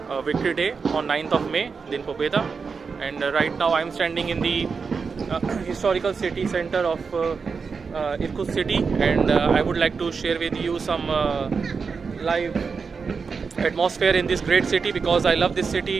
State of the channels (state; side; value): quieter; left; 5.2 dB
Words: Victory Day on 9th of May, Din Pobeda. And right now I'm standing in the historical city center of Irkutsk city, and I would like to share with you some live atmosphere in this great city, because I love this